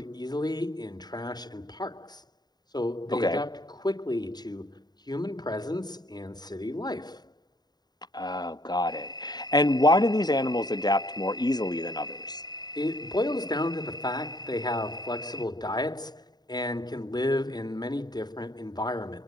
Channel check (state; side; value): late; right; 0.20 ms